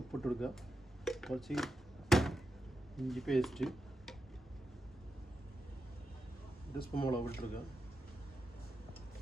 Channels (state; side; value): normal; both; correlation 0.88